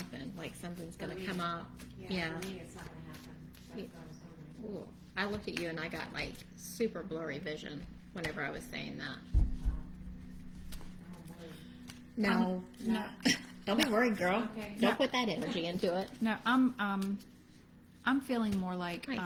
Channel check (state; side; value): identical; both; correlation 1.00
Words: Like something's going to come up. Yeah. For me, it's not going to happen. That's what I was hoping. Ooh. I looked at you and I got like super blurry vision whenever I was saying that. No. No. Don't be worried, girl. Okay. Don't put that energy into it. No, I'm feeling more like Nice.